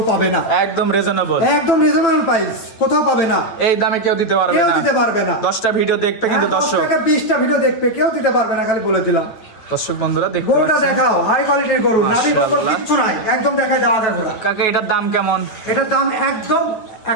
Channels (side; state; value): right; late; 9.0 ms